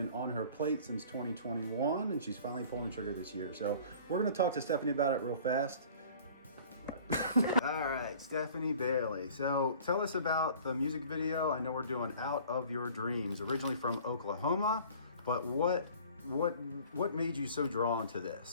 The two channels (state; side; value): inverted; both; correlation -0.48